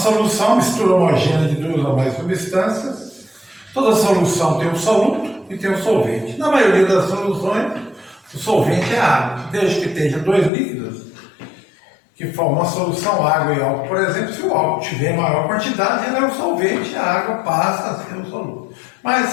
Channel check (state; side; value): drops out; right; at 10.5 s